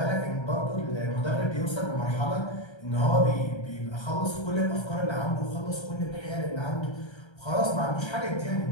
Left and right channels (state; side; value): late; right; 1.3 ms